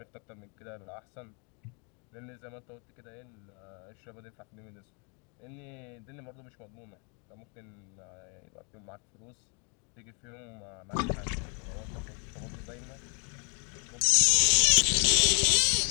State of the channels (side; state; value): right; quieter; 39.9 dB